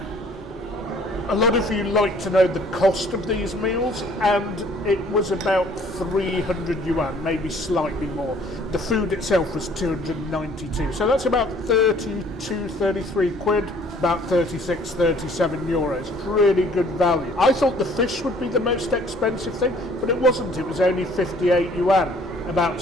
A lot of you like to know the cost of these meals, and it was about 300 yuan, maybe slightly more. The food itself was 292, so that's about 32, 33 quid, about 36, 37 euros. Pretty good value. I thought the fish would be the most expensive thing, but it wasn't. It was only 58 yuan, about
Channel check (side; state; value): both; normal; correlation 0.57